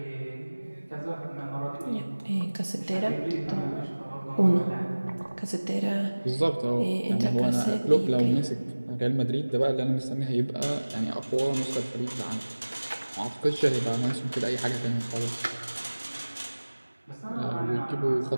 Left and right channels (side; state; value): both; inverted; correlation -1.00